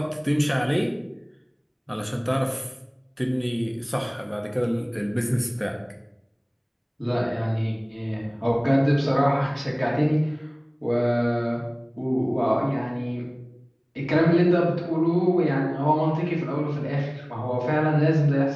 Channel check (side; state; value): both; identical; correlation 1.00